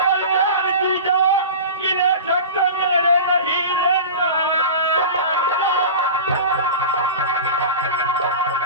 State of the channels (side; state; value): both; inverted; correlation -0.32